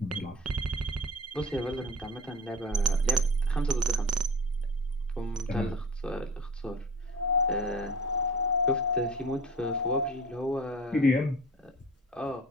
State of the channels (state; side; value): normal; both; correlation 0.36